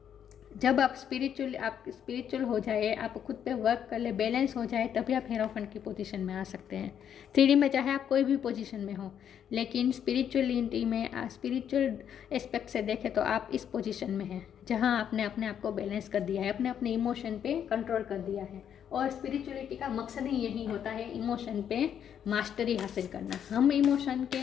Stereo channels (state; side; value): quieter; right; 9.0 dB